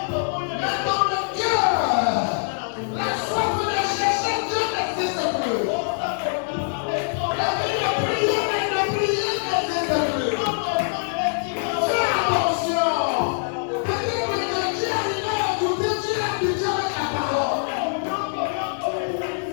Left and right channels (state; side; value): silent; right; 63 dB below the other